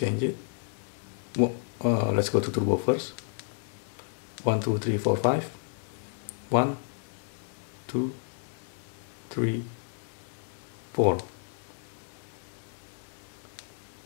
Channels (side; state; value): right; silent; 57 dB below the other